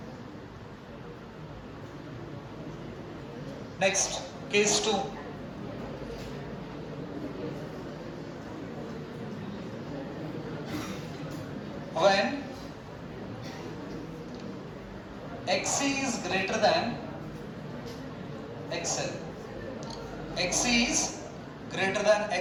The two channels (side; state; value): both; identical; correlation 1.00